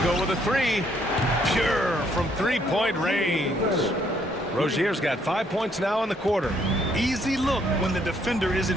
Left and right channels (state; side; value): normal; both; correlation 0.69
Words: go with a 3. Pure from three-point range. Rozier's got 5 points now in the quarter. Easy look when the defender